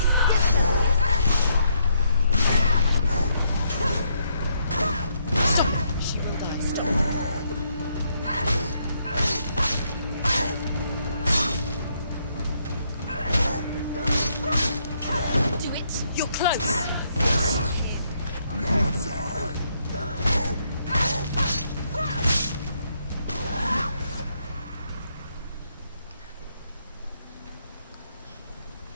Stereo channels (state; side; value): inverted; both; correlation -0.74